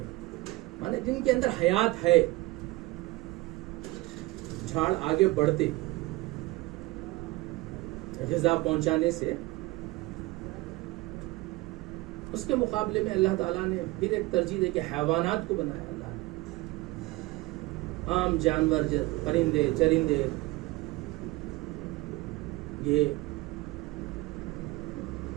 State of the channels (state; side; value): quieter; left; 20.7 dB